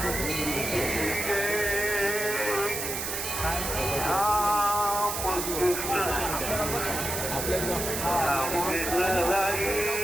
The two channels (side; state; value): right; noise; hiss, 3 dB below the sound